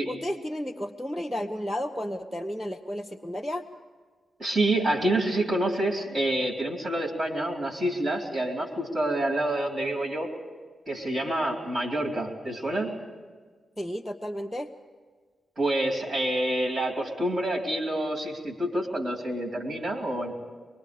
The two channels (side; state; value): both; normal; correlation 0.86